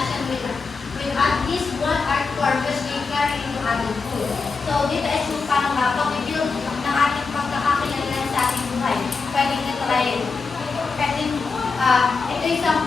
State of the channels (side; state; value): right; quieter; 4.6 dB